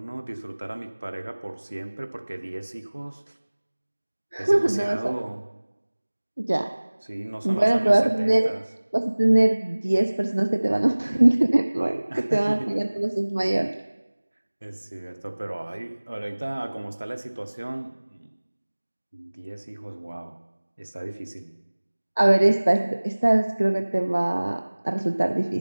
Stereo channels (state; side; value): inverted; both; correlation -1.00